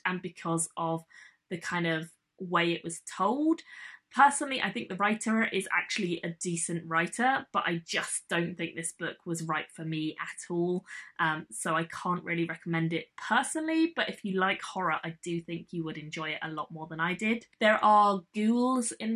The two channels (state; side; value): identical; both; correlation 1.00